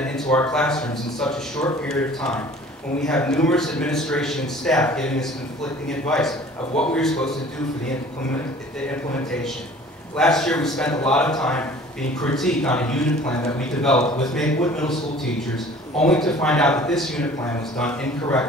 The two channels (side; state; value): both; normal; correlation 0.48